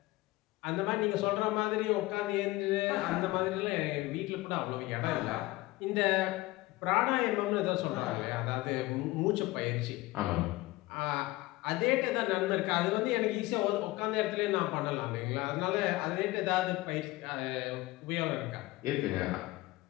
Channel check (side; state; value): right; quieter; 19.5 dB